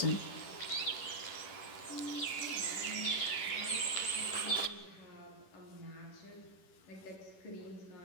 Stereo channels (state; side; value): late; right; 10 ms